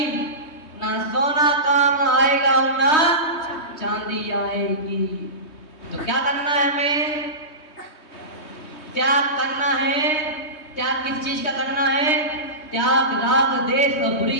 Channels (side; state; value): right; late; 3.2 ms